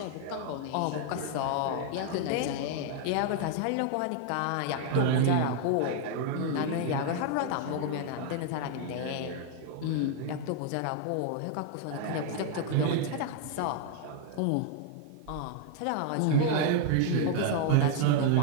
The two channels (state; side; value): different; both; correlation 0.00